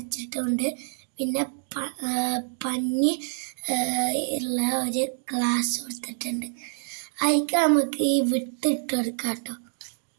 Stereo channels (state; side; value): silent; left; digital silence